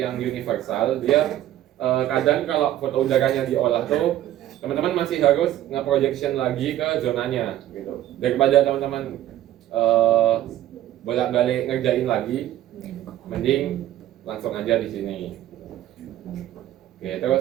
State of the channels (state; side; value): quieter; left; 13.0 dB